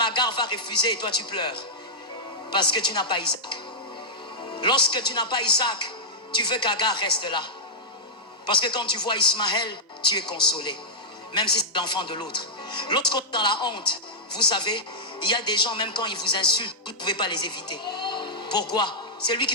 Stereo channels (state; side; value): normal; both; correlation -0.08